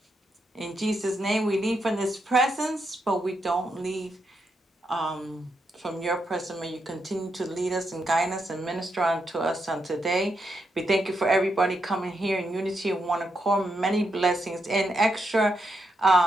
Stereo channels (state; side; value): normal; both; correlation 0.82